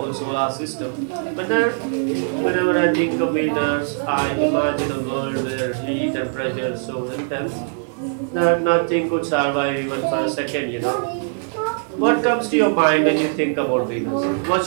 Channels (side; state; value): left; silent; digital silence